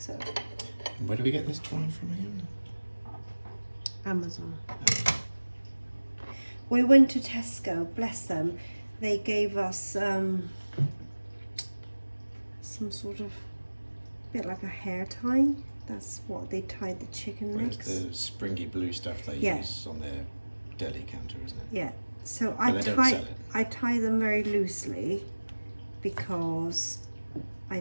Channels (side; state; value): both; inverted; correlation -1.00